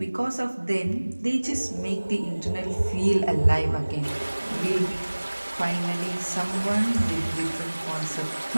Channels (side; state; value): both; inverted; correlation -1.00